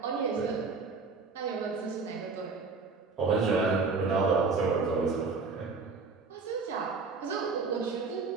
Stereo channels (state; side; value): quieter; left; 4.5 dB